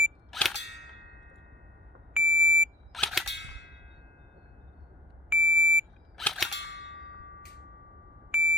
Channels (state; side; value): normal; both; correlation 0.47